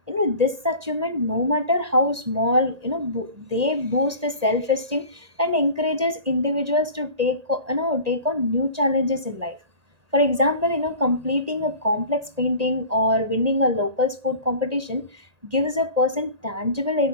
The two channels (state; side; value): late; left; 1.8 ms